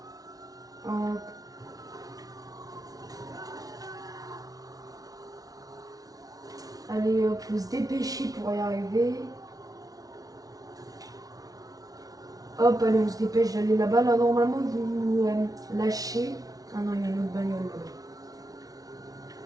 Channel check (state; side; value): late; left; 0.18 ms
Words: Hop. Allez, hop, faut se dépêcher pour y arriver. Hop, allez, on se dépêche d'aller là-bas. Là, normalement, ils vont nous lâcher. Ah non, il y a une autre bagnole là-bas.